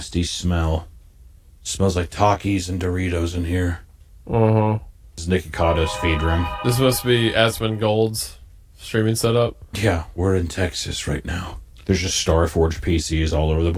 smell. Smells like Takis and Doritos in here. Uh-huh. This is Nicky Cotto's feed room. This must be Asmongold's streaming setup. Yeah, we're in Texas right now. There's just Starforge PCs all over the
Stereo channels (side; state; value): both; identical; correlation 1.00